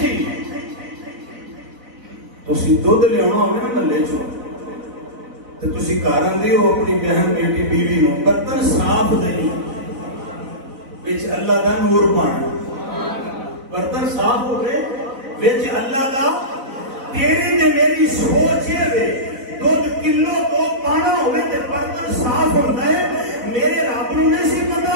تسی دودھ لے آنا ہوئے نا ملے چھو تو تسی کارن دے ہو اپنی بہن بیٹی بیوی ہو برتن صاف دیں ویچ اللہ دا نور پانا برتن صاف ہو گئے ویچ اللہ دا تیری تے میری سوچ ہے دودھ کلو تو پانا ہوئے تے برتن صاف ہوتا ہے میرے رب نو نہیں سی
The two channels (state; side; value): late; left; 4.0 ms